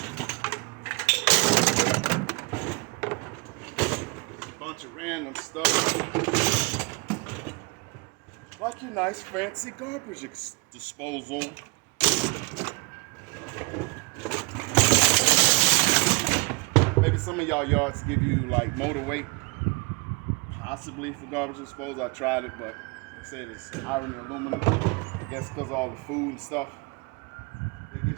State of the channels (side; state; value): left; quieter; 28.4 dB